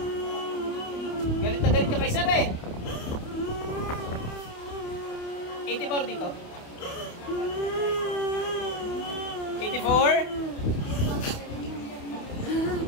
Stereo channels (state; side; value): late; right; 28 ms